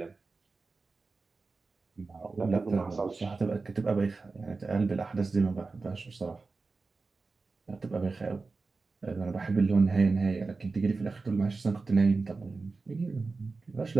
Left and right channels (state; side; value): quieter; left; 4.0 dB